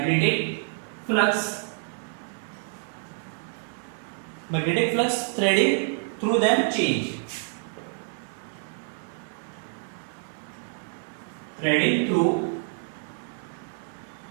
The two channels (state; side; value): silent; left; 59 dB below the other